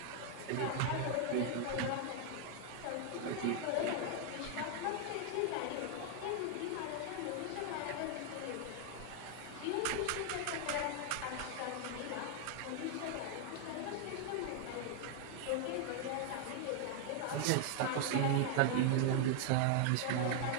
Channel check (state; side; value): different; both; correlation 0.00